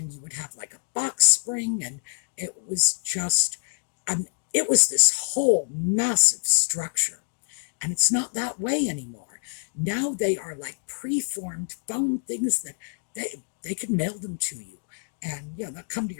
you would have like a box spring, and it was just, it was this whole massive structure. And it's not that way anymore. Now they are like preformed foam things that they can mail them to you. And they'll come to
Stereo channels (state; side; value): silent; right; 61 dB below the other